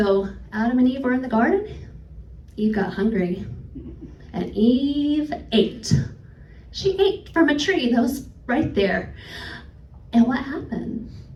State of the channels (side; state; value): both; identical; correlation 1.00